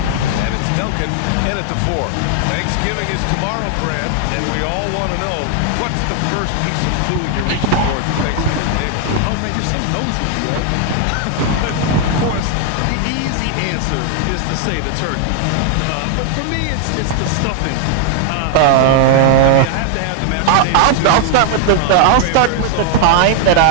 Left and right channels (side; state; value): both; different; correlation 0.00